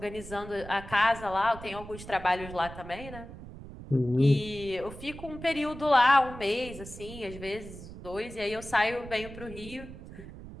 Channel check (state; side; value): noise; right; rumble, 13 dB below the sound